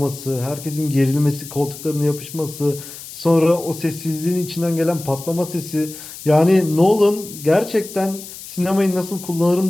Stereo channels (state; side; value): noise; left; hiss, 14 dB below the sound